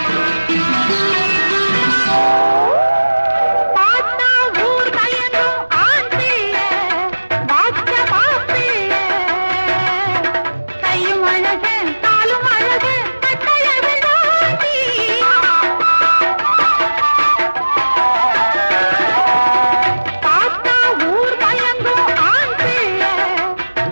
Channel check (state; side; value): inverted; both; correlation -1.00